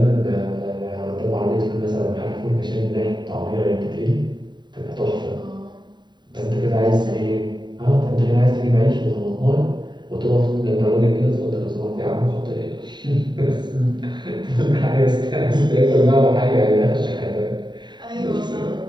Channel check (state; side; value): late; left; 0.22 ms